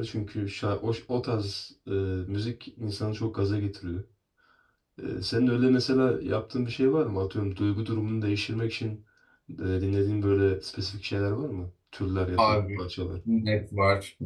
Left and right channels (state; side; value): identical; both; correlation 1.00